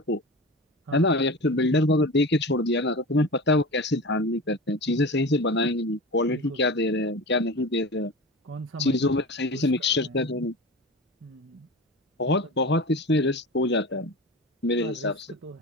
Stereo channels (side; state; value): both; normal; correlation 0.30